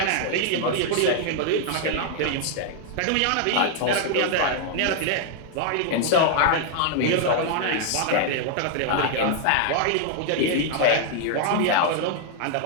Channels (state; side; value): different; both; correlation 0.00